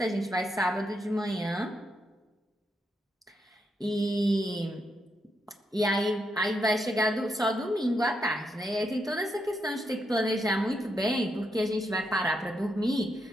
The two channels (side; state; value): both; normal; correlation 0.81